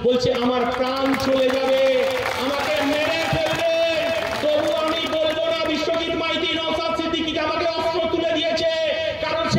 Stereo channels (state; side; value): identical; both; correlation 1.00